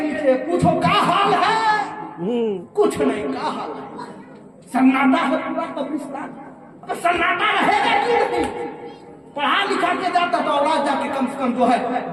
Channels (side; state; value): both; identical; correlation 1.00